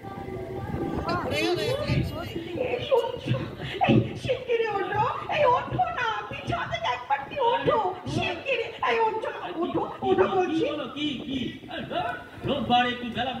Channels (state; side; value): identical; both; correlation 1.00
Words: শিগগিরি ওঠো, এই ওঠো না, পিছন থেকে একবার কি ওঠো, শিগগিরি এই ওঠো, ওঠো বলছি। কি রোববার একটু বেলা